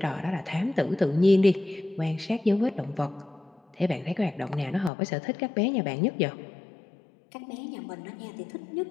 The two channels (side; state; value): right; drops out; at 4.9 s